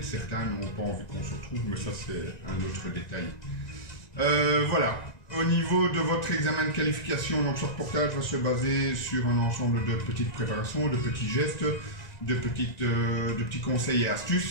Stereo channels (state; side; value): late; right; 1.9 ms